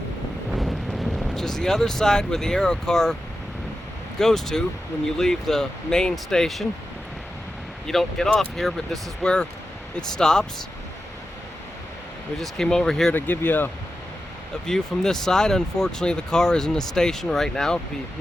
which is the other side where the Aero car goes to when you leave the main station. You don't get off here, but this is where it stops. We just came over here to give you a view from this side. Unfortunately, the car is in the station right now. It'd be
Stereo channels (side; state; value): both; normal; correlation 0.91